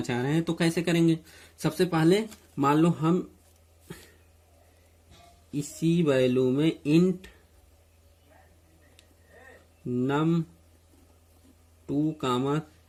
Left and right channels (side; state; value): both; identical; correlation 1.00